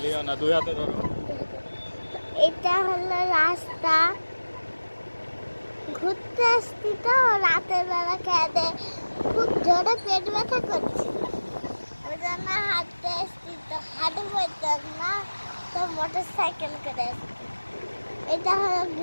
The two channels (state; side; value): inverted; both; correlation -1.00